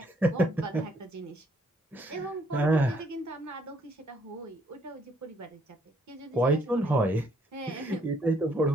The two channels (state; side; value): normal; both; correlation 0.68